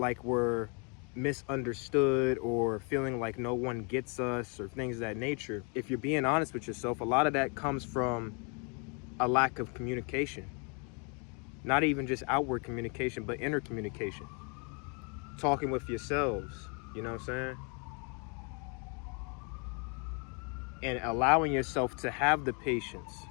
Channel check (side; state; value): right; quieter; 35.6 dB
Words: we're misunderstood, or feeling like no one gets us, or things of that nature. If you're being honest with yourself, a lot of that comes from a lack of communication. Not even just outward communication, but inner communication. Talking with yourselves, you know what I'm saying? And allowing yourself to have the patience